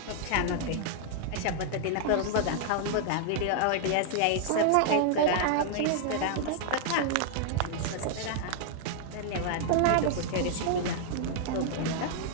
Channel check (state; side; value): different; both; correlation -0.01